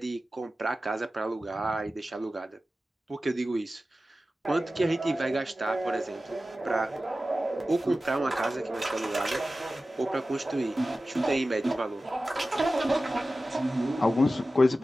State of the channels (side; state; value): both; normal; correlation 0.95